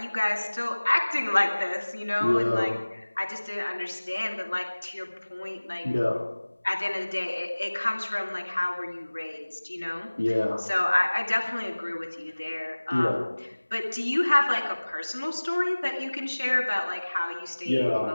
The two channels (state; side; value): inverted; both; correlation -1.00